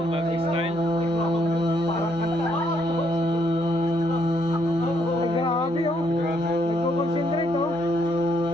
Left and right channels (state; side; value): normal; both; correlation 0.72